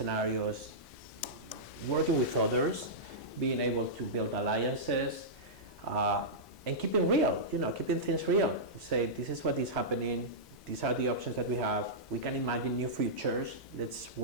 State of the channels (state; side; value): normal; both; correlation -0.13